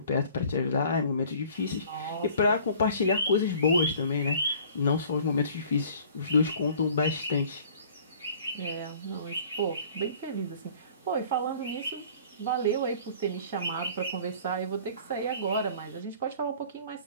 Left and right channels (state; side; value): inverted; both; correlation -0.50